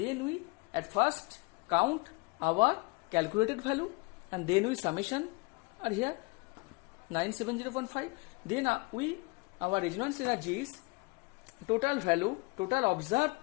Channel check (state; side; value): quieter; right; 27.5 dB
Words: we at first count our calculated value, and then we summation are here 970.5. Then our resonance energy is total value, total